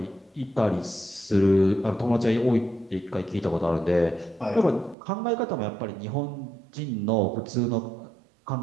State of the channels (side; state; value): left; drops out; at 5.0 s